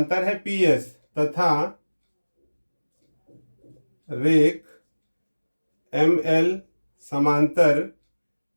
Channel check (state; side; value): inverted; both; correlation -1.00